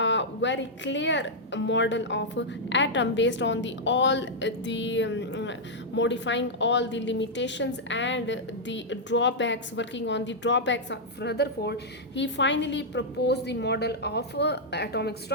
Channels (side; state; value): both; normal; correlation -0.07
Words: very clear model of atom based on the all the modifying all the limitations and the drawbacks, working on the drawbacks of Rutherford. He finally proposed the model of atomic